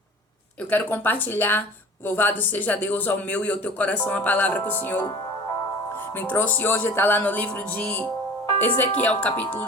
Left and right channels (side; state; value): both; normal; correlation 0.41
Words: Eu quero compartilhar, louvado seja Deus, ao meu e ao teu coração, a palavra que o Senhor me trouxe hoje. Está lá no livro de Ezequiel, capítulo